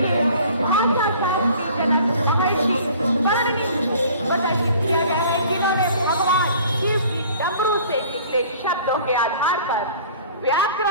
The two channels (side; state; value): both; inverted; correlation -0.49